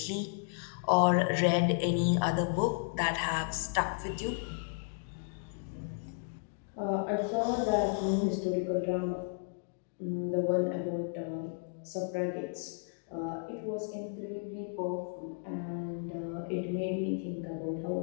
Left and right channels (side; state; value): right; silent; digital silence